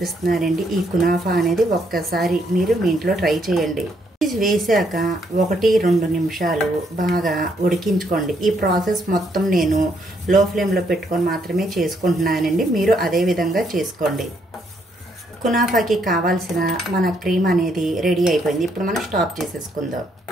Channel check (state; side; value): normal; both; correlation 0.73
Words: ఈ కునాఫా అనేది ఒక్కసారి మీరు మీ ఇంట్లో ట్రై చేయండి. చీజ్ వేసాక 1-2 నిమిషాలు బాగా ఉడికించుకోండి. ఈ ప్రాసెస్ మొత్తం నేను లో ఫ్లేమ్లో పెట్టుకొని మాత్రమే చేసుకుంటున్నానండి. మీరు అదే విధంగా చేసుకోండి. కునాఫాకి కావాల్సిన మన క్రీమ్ అనేది రెడీ అయిపోయింది. ఇప్పుడు మనం స్టాప్ చేసేసుకుందాం.